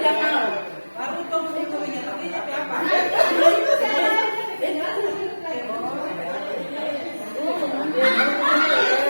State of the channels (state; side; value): inverted; both; correlation -1.00